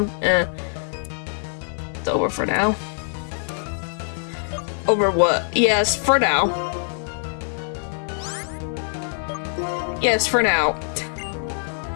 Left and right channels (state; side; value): silent; right; digital silence